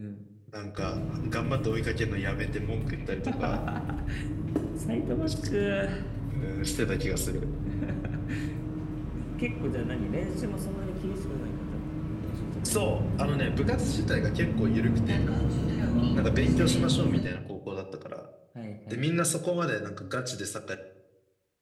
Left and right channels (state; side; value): identical; both; correlation 1.00